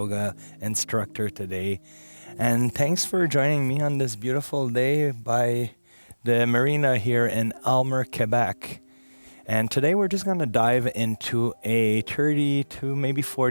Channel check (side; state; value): both; inverted; correlation -1.00